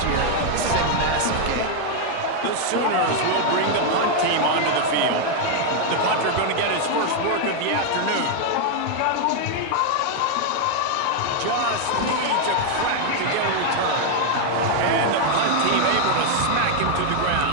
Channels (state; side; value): different; both; correlation 0.00